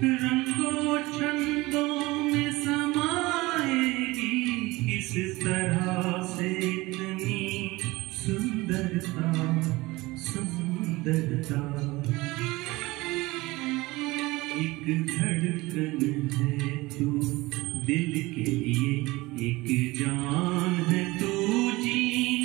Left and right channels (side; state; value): left; quieter; 21.0 dB